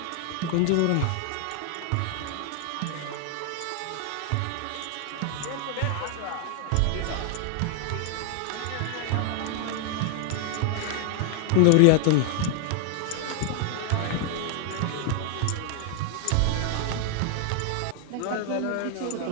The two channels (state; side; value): different; both; correlation 0.00